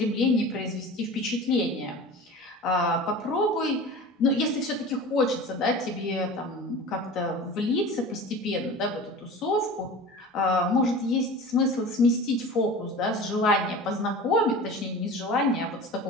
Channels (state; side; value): normal; both; correlation 0.36